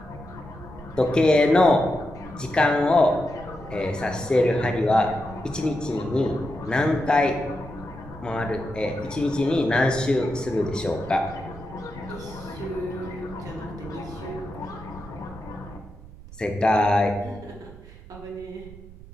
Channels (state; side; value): noise; right; rumble, 18 dB below the sound